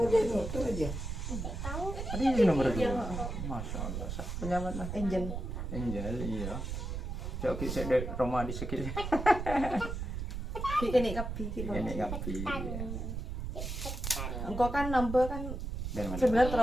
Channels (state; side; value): noise; right; rumble, 4 dB below the sound